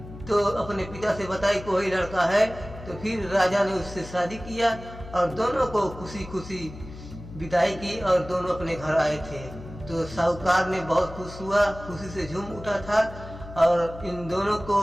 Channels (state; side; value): noise; left; hum, 14 dB below the sound